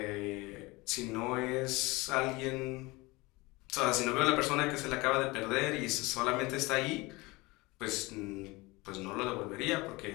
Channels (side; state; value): right; quieter; 23.1 dB